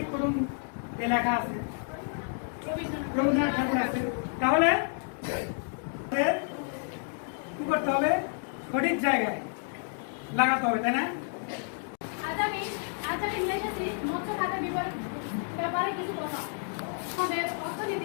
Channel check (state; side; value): silent; right; 58 dB below the other